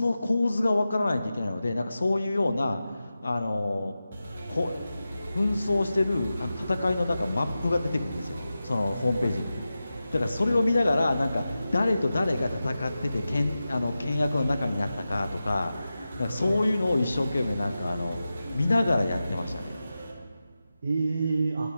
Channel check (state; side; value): inverted; both; correlation -0.93